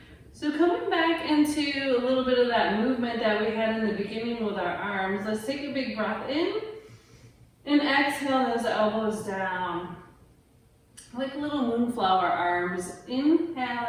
So coming back into a little bit of that movement that we had in the beginning with our arms, let's take a big breath in and exhale those elbows down. Like little moonflower arms. Inhale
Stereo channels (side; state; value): both; identical; correlation 1.00